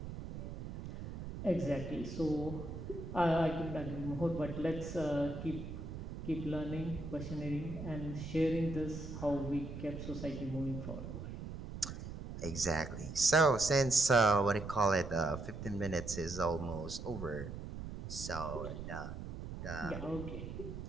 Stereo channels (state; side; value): noise; right; rumble, 8 dB below the sound